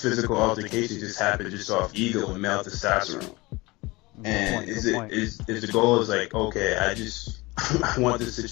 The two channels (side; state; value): right; quieter; 22.7 dB